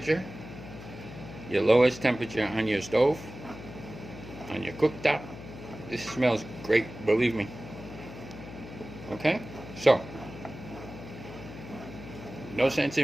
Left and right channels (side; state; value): left; noise; hum, 13 dB below the sound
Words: Your lowest temperature on your stove, on your cooktop. This smells great, believe me. Okay? So, no sense